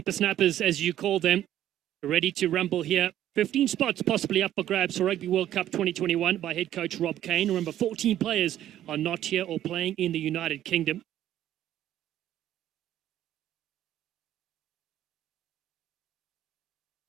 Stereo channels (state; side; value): quieter; left; 12.2 dB